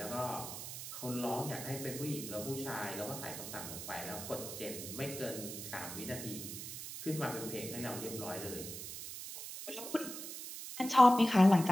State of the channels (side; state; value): right; noise; hiss, 8 dB below the sound